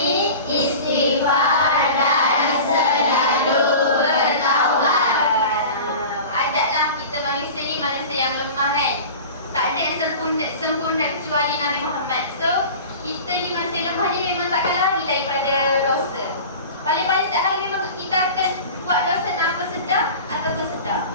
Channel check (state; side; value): inverted; both; correlation -0.36